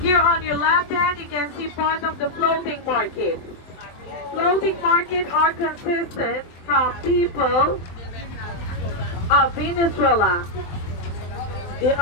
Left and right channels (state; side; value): late; right; 23 ms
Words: on your left hand, you can see part of the floating market. Floating market are consistent from people of Venezuela. They